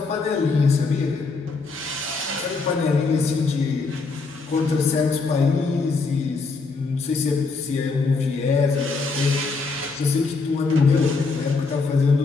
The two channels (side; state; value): right; quieter; 4.2 dB